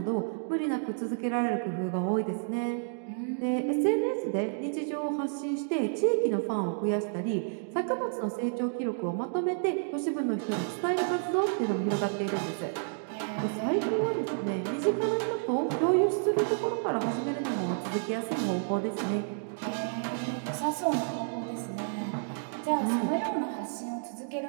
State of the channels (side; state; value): left; silent; digital silence